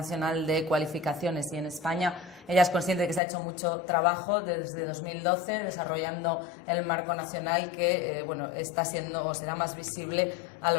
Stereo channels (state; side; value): drops out; right; at 3.2 s